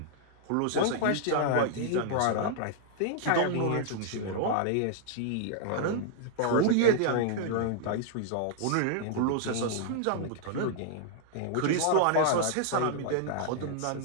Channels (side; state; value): both; different; correlation -0.01